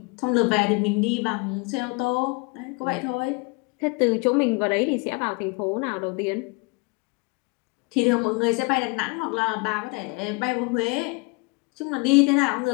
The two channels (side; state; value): right; quieter; 29.2 dB